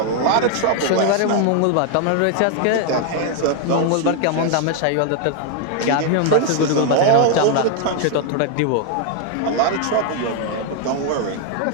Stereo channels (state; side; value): different; both; correlation 0.00